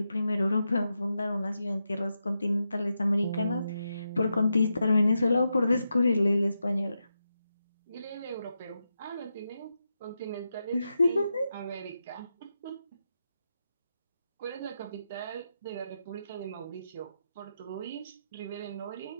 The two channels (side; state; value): both; inverted; correlation -0.87